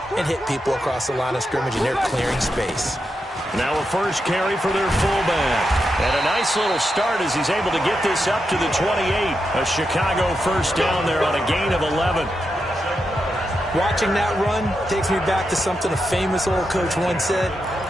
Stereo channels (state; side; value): normal; both; correlation 0.86